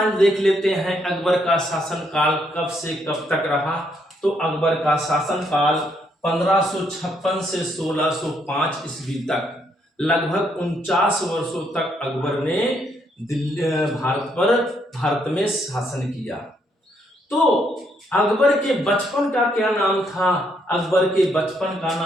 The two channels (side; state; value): both; normal; correlation 0.73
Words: देख लेते हैं। अकबर का शासनकाल कब से कब तक रहा? तो अकबर का शासनकाल 1556 से 1605 ईस्वी तक, लगभग 49 वर्षों तक अकबर ने दिल्ली भारत में शासन किया। तो अकबर के बचपन का क्या नाम था? अकबर के बचपन का